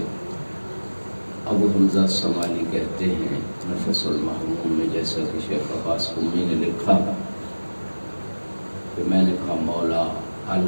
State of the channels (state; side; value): inverted; both; correlation -1.00